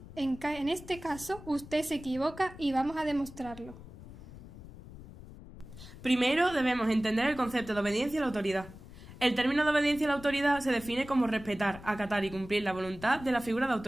En este caso, usted se equivoca y vamos a demostrarlo. Primero debemos entender el concepto de obediencia a la autoridad. El término de obediencia a la autoridad se define como respetar, acatar y cumplir la voluntad de la figura de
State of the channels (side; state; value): left; noise; rumble, 16 dB below the sound